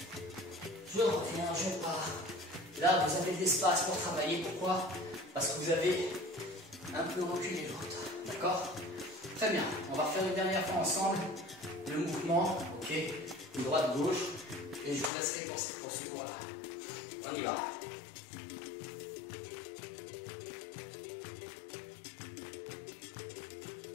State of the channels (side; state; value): right; drops out; at 15.1 s